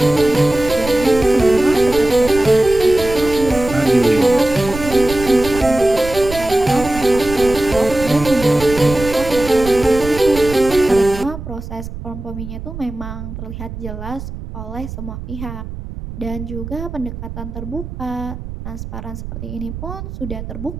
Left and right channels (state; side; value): noise; right; rumble, 10 dB below the sound